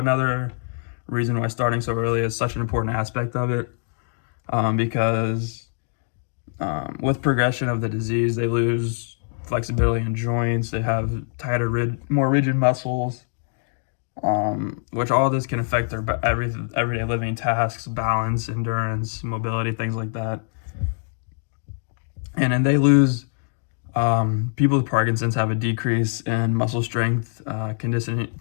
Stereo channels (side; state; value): right; silent; digital silence